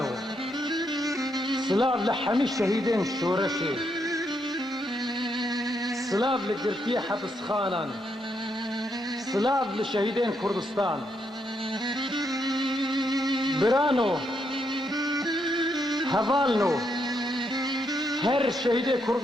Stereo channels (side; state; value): both; normal; correlation 0.78